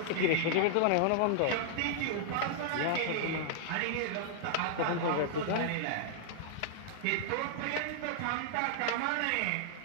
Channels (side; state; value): both; different; correlation -0.01